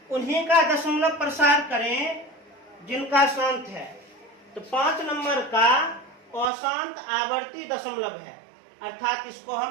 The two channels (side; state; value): left; drops out; at 6.5 s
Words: उन्हीं का दशमलव प्रसार करें जिनका शांत है। तो 5 नंबर का अशांत आवर्ती दशमलव है, अर्थात इसको